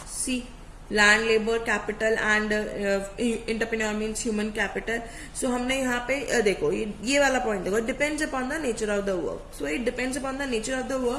See, land, labour, capital and entrepreneur means human capital. So हमने यहाँ पे देखो ये वाला पॉइंट देखो, depends upon the nature of the work. So it depends upon the nature of the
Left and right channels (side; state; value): both; identical; correlation 1.00